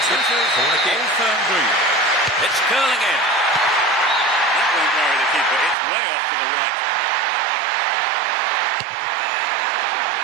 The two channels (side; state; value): left; drops out; at 5.8 s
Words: it. Corner kick. Firm green. It's curling in. That won't worry the keeper. It's way off to the right.